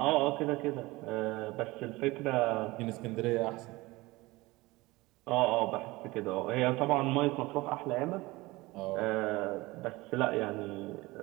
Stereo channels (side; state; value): left; quieter; 21.1 dB